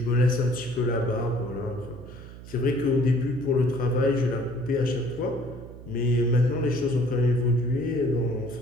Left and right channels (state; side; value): noise; right; hum, 15 dB below the sound